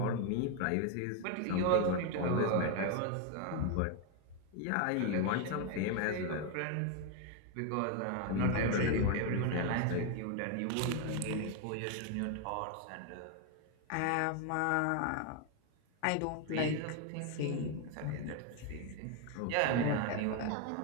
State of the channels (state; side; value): different; both; correlation 0.01